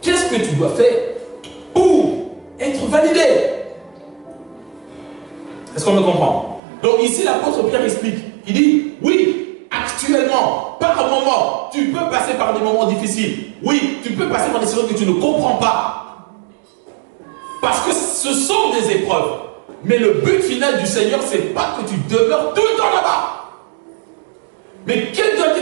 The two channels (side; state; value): left; drops out; at 6.6 s